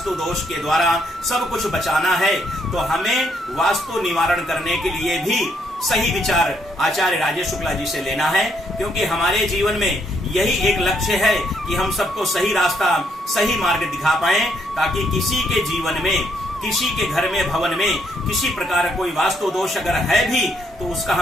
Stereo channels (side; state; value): both; normal; correlation 0.72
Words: दोष के द्वारा सब कुछ बचाना है तो हमें वास्तु निवारण करने के लिए भी सही विचार आचार्य राजेश शुक्ला जी से लेना है। क्योंकि हमारे जीवन में यही एक लक्ष्य है कि हम सबको सही रास्ता, सही मार्ग दिखा पाए, ताकि किसी के जीवन में, किसी के घर में, भवन में किसी प्रकार कोई वास्तु दोष अगर है भी तो उसका